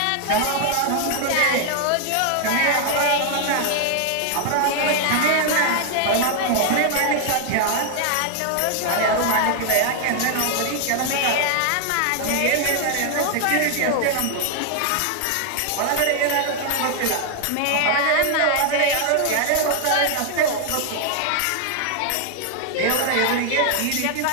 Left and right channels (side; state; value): both; different; correlation 0.00